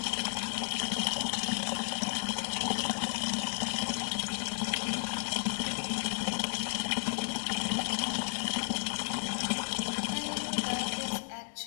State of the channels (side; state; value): right; silent; digital silence